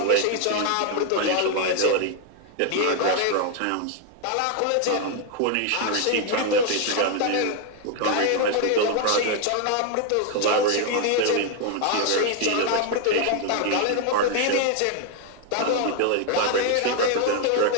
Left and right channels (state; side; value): different; both; correlation 0.00